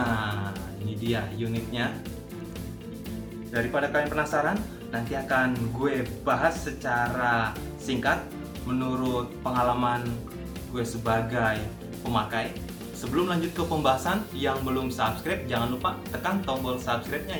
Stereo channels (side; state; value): both; identical; correlation 1.00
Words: ini dia unitnya. Daripada kalian penasaran, nanti akan gue bahas secara singkat menurut pengalaman gue sebagai pemakai. Sebelum lanjut ke pembahasan, yang belum subscribe jangan lupa tekan tombol subscribe-nya